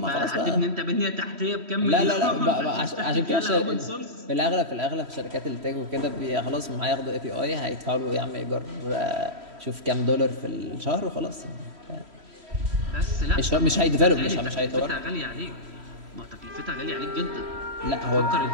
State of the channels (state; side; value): late; left; 3.1 ms